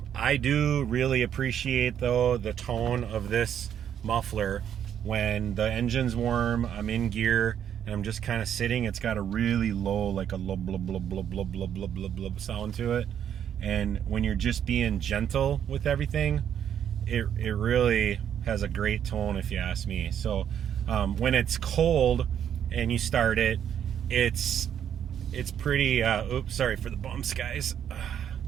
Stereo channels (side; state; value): left; quieter; 9.3 dB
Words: I do really appreciate, though, the tone of this muffler when the engine's warm, I'm in gear, and I'm just kind of sitting. It's got a really low, like a low blub blub blub blub blub blub blub blub sound to it. And when you're just being gentle with everything, it really has a great tone, if you ask me. So when it's cold and you start it, it's pretty, oops, sorry for the bumps, guys.